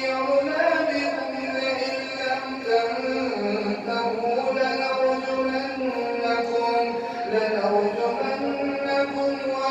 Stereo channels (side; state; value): both; identical; correlation 1.00